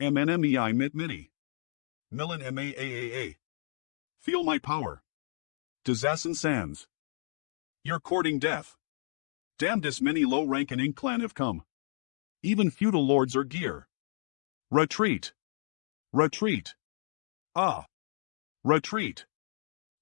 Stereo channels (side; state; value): right; silent; digital silence